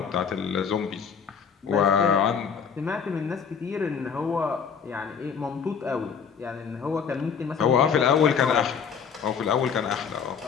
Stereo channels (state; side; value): quieter; right; 6.7 dB